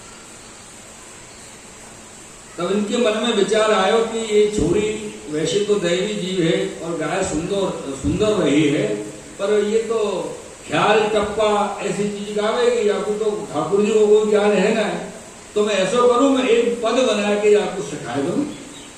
तब इनके मन में विचार आयो कि ये छोरी वैसे तो दैवी जीव है और गाय सुंदर रही है, पर ये तो ख्याल टप्पा ऐसी चीज गावेगी, आपको तो ठाकुर जी को कोई ज्ञान है ना, तो मैं ऐसा करूं, मैं एक पद बना के आपको सिखा दूं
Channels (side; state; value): both; identical; correlation 1.00